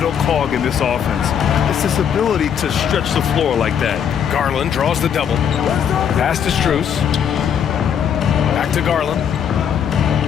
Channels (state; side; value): quieter; right; 8.3 dB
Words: cog in this offense. It's his ability to stretch the floor like that. Garland draws the double. Pass to Strus. Back to Garland.